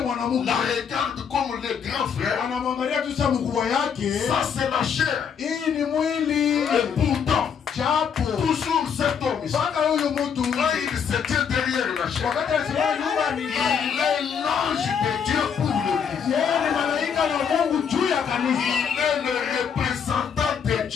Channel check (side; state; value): right; quieter; 7.1 dB